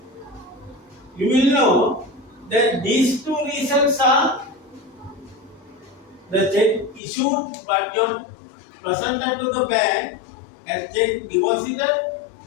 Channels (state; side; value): drops out; right; at 7.0 s